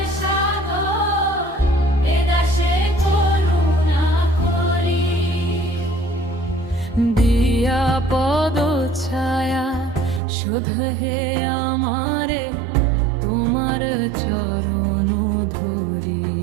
সাগর, এ দাসে করুণা করি। দিয়া পদ ছায়া শুধ হে আমারে, তোমার চরণ ধরি।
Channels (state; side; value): drops out; left; at 10.2 s